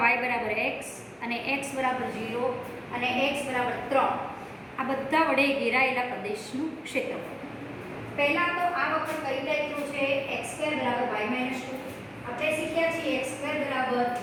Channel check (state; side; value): identical; both; correlation 1.00